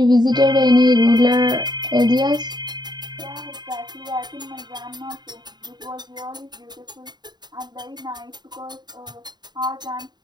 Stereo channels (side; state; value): left; late; 0.21 ms